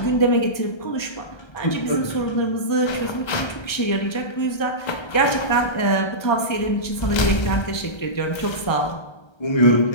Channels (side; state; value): right; late; 1.3 ms